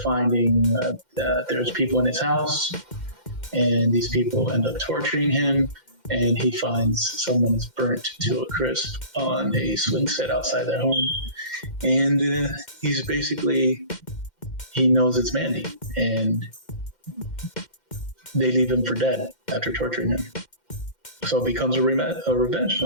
finding there's people in his house, and these people end up torturing him, and he finds someone is burnt to a crisp on a swing set outside their home, and he knows it's Mandy, and they leave him for dead after torturing him. So it becomes a revenge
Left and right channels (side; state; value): right; late; 2.1 ms